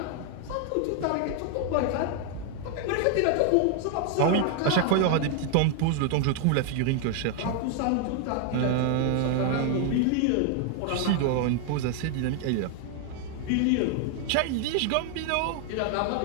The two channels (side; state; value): both; different; correlation 0.00